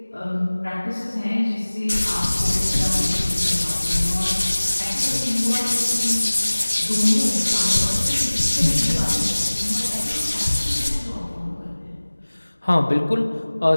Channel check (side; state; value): both; inverted; correlation -1.00